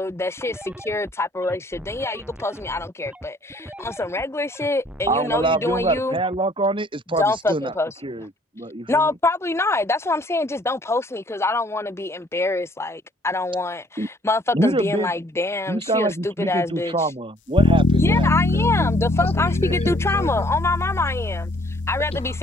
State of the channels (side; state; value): both; normal; correlation 0.61